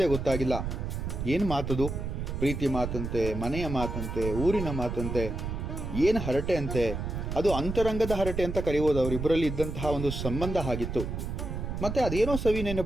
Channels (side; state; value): right; noise; rumble, 4 dB below the sound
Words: ಗೊತ್ತಾಗಿಲ್ಲ. ಏನು ಮಾತದು? ಪ್ರೀತಿ ಮಾತಂತೆ, ಮನೆಯ ಮಾತಂತೆ, ಊರಿನ ಮಾತಂತೆ, ಏನು ಹರಟೆ ಅಂತೆ. ಅದು ಅಂತರಂಗದ ಹರಟೆ ಅಂತ ಕರೆಯುವುದು. ಅವರಿಬ್ಬರಲ್ಲಿ ಇದ್ದಂತಹ ಒಂದು ಸಂಬಂಧ ಆಗಿತ್ತು. ಮತ್ತೆ ಅದೇನೋ ಸವಿ